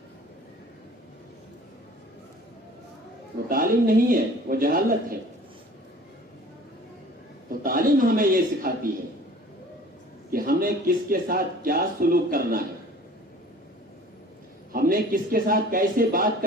وہ تعلیم نہیں ہے، وہ جہالت ہے. تو تعلیم ہمیں یہ سکھاتی ہے کہ ہم نے کس کے ساتھ کیا سلوک کرنا ہے، ہم نے کس کے ساتھ کیسے بات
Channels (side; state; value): both; normal; correlation 0.48